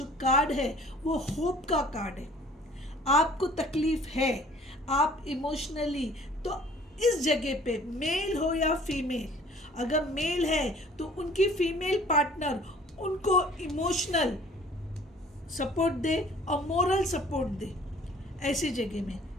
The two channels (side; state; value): both; normal; correlation 0.53